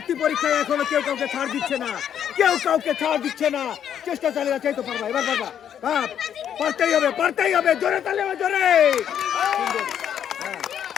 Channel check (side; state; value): right; quieter; 9.3 dB